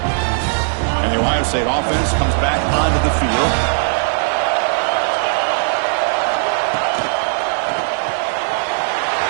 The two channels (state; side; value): silent; left; digital silence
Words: Ohio State offense comes back onto the field.